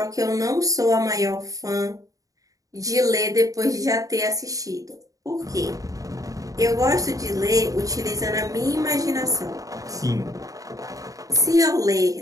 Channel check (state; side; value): late; left; 0.17 ms